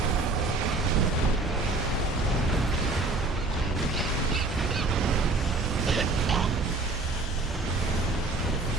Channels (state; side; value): quieter; left; 3.4 dB